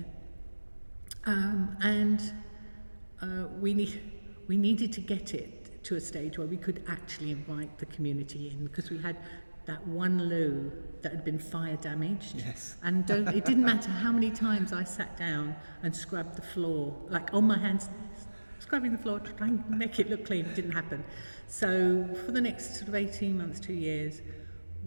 and we needed to get it to a stage where we could actually invite the community in, because we had that one loo that had been fire damaged. Yes. And it didn't matter how many times I sat down and scrubbed the floor, like on my hands, scrubbing the floor, trying to make it look clean. It didn't happen. So for the next sort of 18 months, 2 years,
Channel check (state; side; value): inverted; both; correlation -1.00